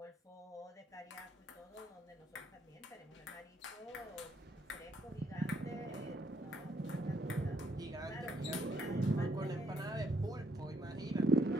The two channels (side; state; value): both; normal; correlation 0.72